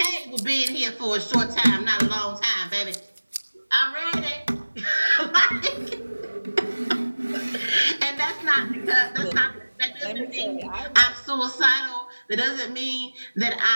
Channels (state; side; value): inverted; both; correlation -1.00